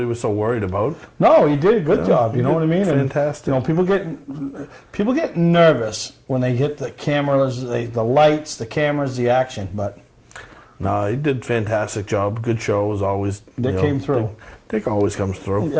was so worried about. No, he did a good job. You know what I mean? Fantastic. And, people get nervous when they hit the cameras, the lights, the cameras, the action. But no, he did a fantastic job. Good show as always. Dick came through. Dick always comes through.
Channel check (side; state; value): both; identical; correlation 1.00